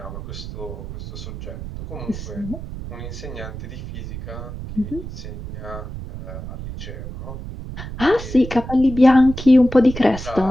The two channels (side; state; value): right; noise; rumble, 9 dB below the sound